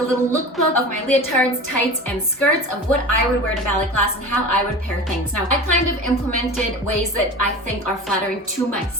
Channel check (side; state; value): both; normal; correlation 0.34